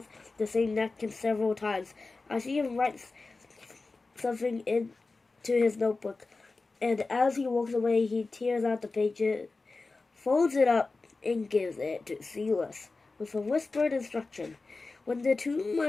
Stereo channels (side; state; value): right; quieter; 3.7 dB